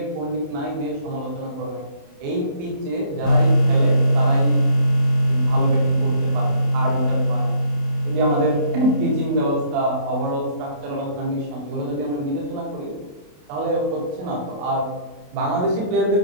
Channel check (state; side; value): late; left; 28 ms